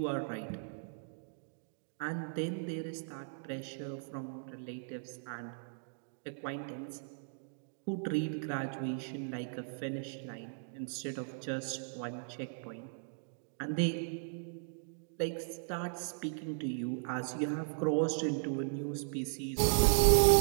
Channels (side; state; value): left; silent; digital silence